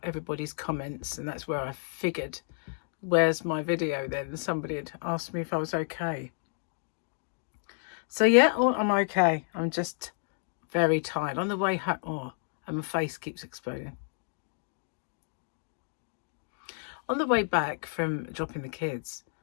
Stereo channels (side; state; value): right; silent; 57 dB below the other